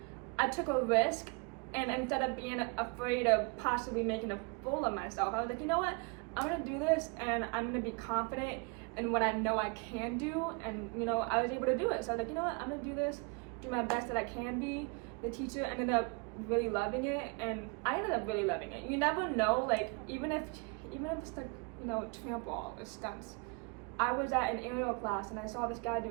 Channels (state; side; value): quieter; left; 31.2 dB